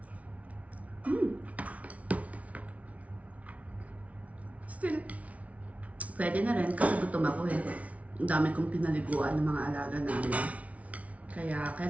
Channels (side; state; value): left; late; 0.067 ms